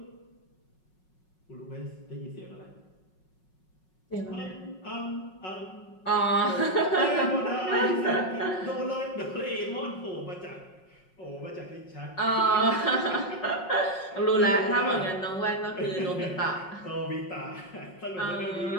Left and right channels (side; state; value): right; late; 5.5 ms